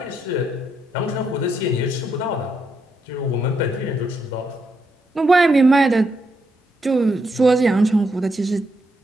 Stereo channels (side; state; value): both; normal; correlation 0.79